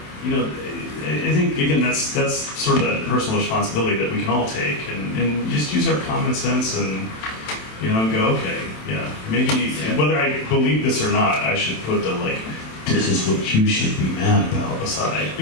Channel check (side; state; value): right; late; 27 ms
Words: Right. I think, again, that's sort of that personal responsibility that we can all take and just use our common sense and, go, okay, yeah, maybe, whether I believe this or not, I should put the, this is what you should be mad about aside,